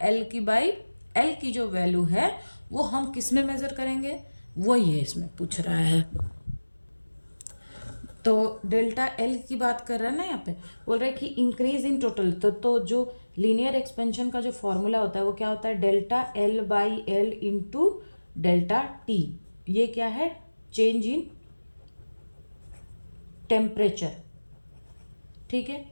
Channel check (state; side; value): inverted; both; correlation -1.00